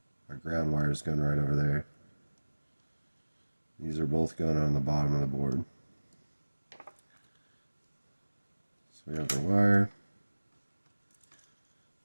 our ground wire is going right over there. These are both going on the bottom of the board. So we have our wire.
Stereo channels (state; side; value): inverted; both; correlation -1.00